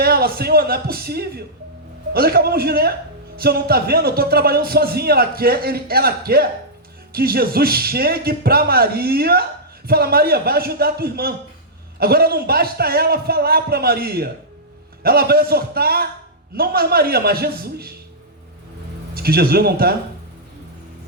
Senhor, não é possível. Nós acabamos de ler. O Senhor não está vendo? Eu estou trabalhando sozinha. Ela quer que Jesus chegue para Maria e fala, Maria, vai ajudar a tua irmã. Agora não basta ela falar para Maria. Ela vai exortar, não mais Maria, mas Jesus. Diz que Jesus não está.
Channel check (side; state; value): both; normal; correlation -0.11